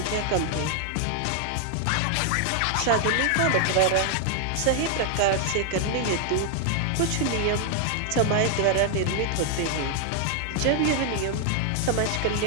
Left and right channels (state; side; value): different; both; correlation 0.00